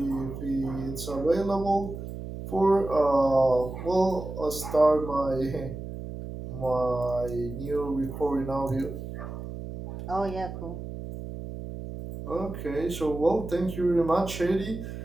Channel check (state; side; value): noise; right; hum, 9 dB below the sound